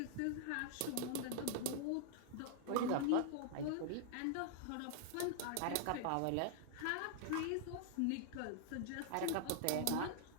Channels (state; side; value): different; both; correlation -0.01